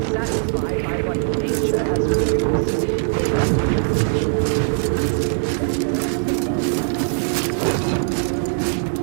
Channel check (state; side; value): silent; left; digital silence